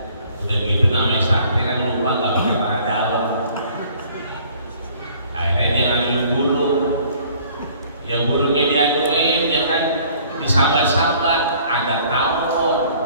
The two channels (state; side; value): inverted; both; correlation -0.55